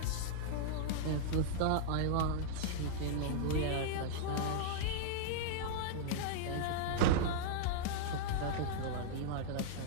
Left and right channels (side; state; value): both; different; correlation -0.01